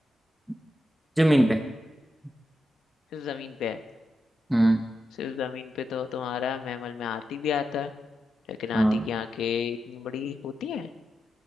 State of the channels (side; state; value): both; normal; correlation 0.88